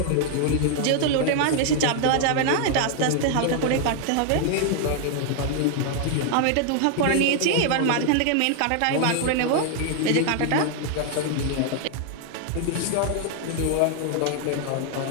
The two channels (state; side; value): different; both; correlation 0.00